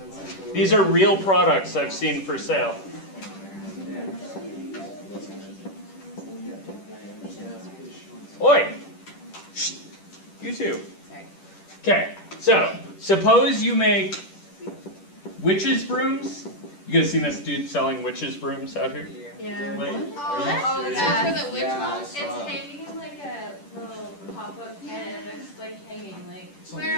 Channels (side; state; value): right; late; 10 ms